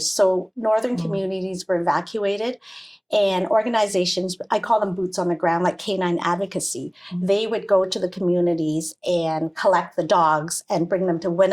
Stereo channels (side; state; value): both; identical; correlation 1.00